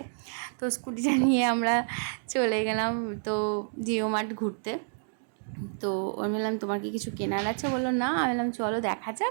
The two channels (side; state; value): left; silent; digital silence